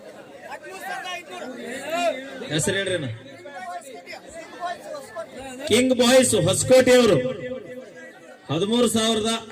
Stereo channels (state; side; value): identical; both; correlation 1.00